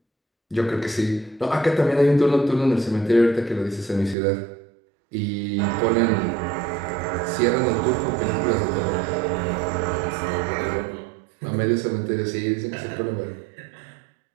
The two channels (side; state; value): left; drops out; at 4.2 s